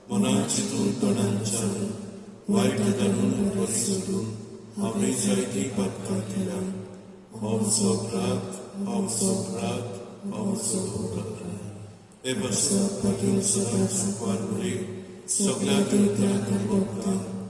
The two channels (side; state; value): both; identical; correlation 1.00